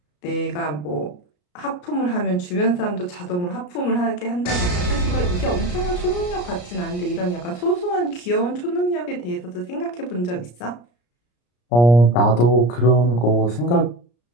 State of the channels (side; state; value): right; late; 34 ms